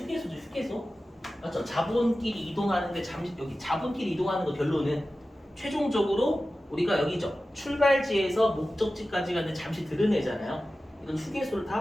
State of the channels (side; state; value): both; normal; correlation 0.95